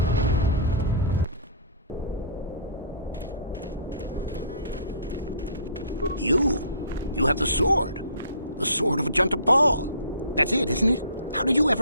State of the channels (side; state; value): both; inverted; correlation -0.48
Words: You have the sword. The sword of Ajunta Paul. That's it, isn't it? How did you